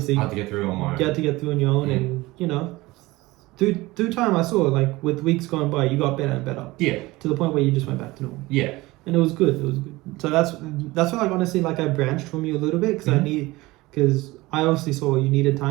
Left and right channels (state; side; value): quieter; left; 20.4 dB